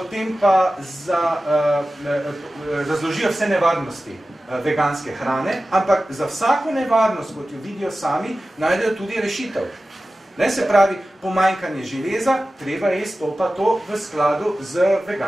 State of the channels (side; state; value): both; normal; correlation 0.95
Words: pa razložijo vse nevarnosti veganske hrane, ampak za vsako nevarnost, kot jo vidijo sami, najdejo tudi rešitev. Se pravi, pomanjkanje železa, treba jesti to v skladu z